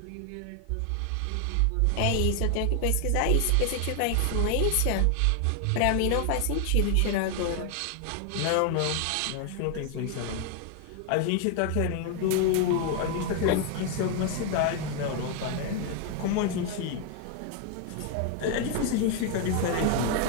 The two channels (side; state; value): both; different; correlation 0.00